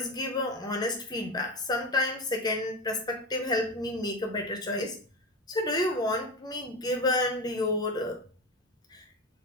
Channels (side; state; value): both; normal; correlation 0.20